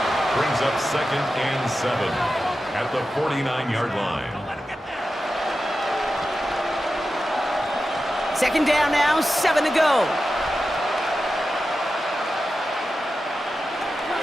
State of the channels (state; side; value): normal; both; correlation 0.92